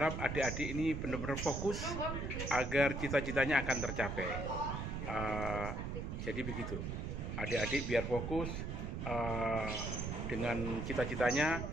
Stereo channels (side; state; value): right; noise; rumble, 4 dB below the sound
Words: adik-adik ini benar-benar fokus agar cita-citanya akan tercapai. Jadi begitu, adik-adik biar fokus dengan cita-citanya,